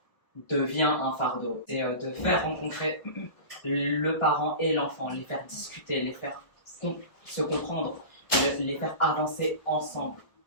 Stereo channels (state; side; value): late; right; 1.3 ms